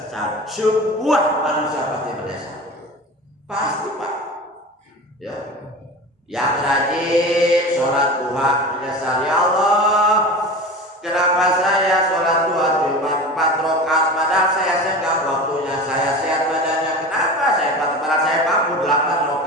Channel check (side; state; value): both; normal; correlation 0.32